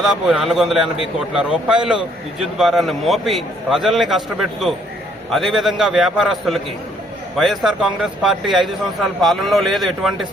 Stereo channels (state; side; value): normal; both; correlation 0.66